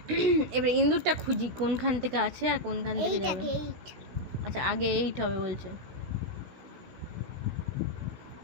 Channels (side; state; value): left; late; 16 ms